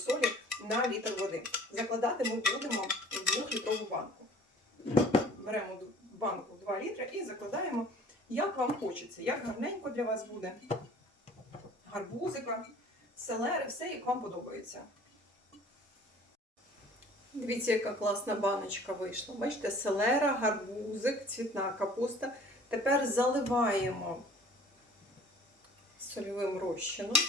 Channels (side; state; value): both; normal; correlation 0.49